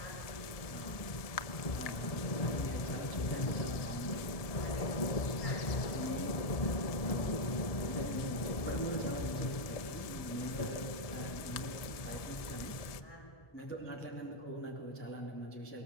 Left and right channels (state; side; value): late; right; 1.7 ms